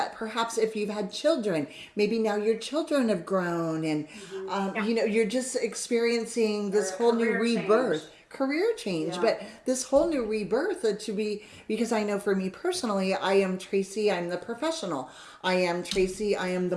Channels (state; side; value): identical; both; correlation 1.00